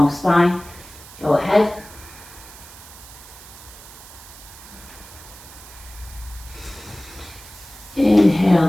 spine, go ahead.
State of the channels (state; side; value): noise; right; hiss, 18 dB below the sound